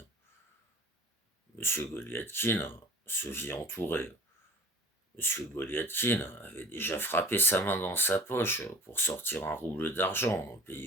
Monsieur Goliathkin se vit entouré. Monsieur Goliathkin avait déjà frappé sa main dans sa poche pour sortir 1 rouble d'argent,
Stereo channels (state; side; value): normal; both; correlation 0.43